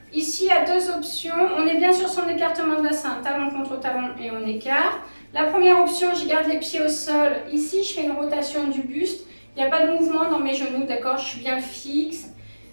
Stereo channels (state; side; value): inverted; both; correlation -1.00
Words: ici, il y a deux options. On est bien sur son écartement de bassin, talon contre talon et on écarte. La première option, je garde les pieds au sol. Ici, je fais une rotation du buste. Il n'y a pas de mouvement dans mes genoux, d'accord? Je suis bien fixe.